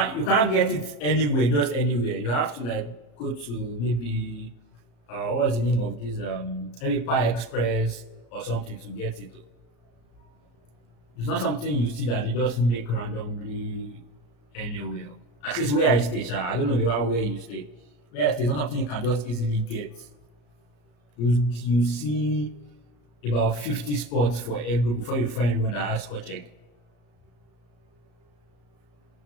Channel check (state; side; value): late; right; 34 ms